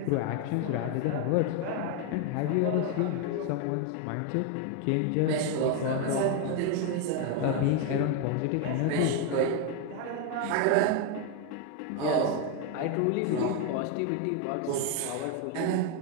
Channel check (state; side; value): different; both; correlation 0.01